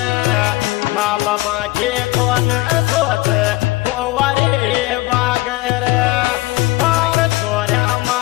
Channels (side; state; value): right; quieter; 19.2 dB